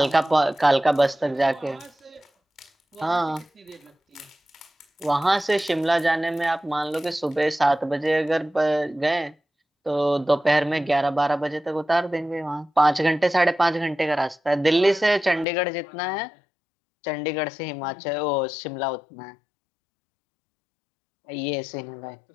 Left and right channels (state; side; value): drops out; right; at 15.5 s